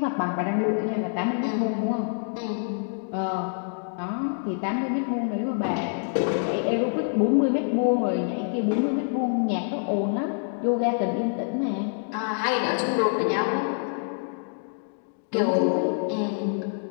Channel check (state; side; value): silent; right; digital silence